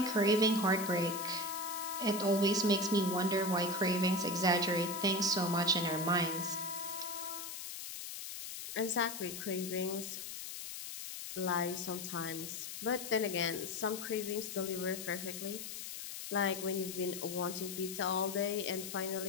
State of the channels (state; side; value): noise; left; hiss, 8 dB below the sound